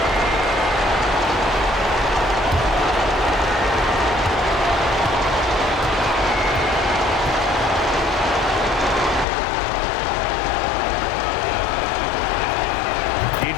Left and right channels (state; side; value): drops out; right; at 9.2 s